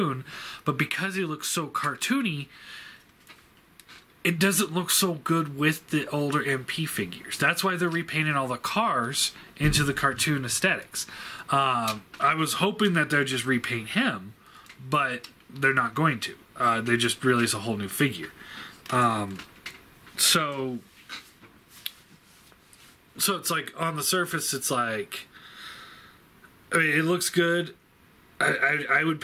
but because he looks so cartoony, it doesn't look so good with the older MP figures. That's why they're repainting all the cars into the cartoon aesthetics. I was hoping that they'd just repaint him, but they're not going to. They just release a whole new figure. So it's like, on the surface, it's like, I mean, it looks good. I would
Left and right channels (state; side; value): identical; both; correlation 1.00